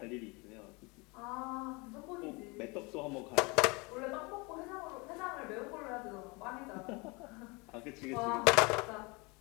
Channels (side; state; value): right; quieter; 27.8 dB